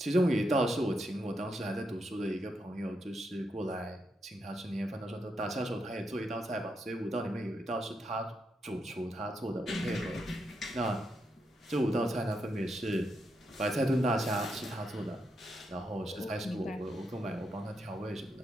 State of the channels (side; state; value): both; normal; correlation 0.82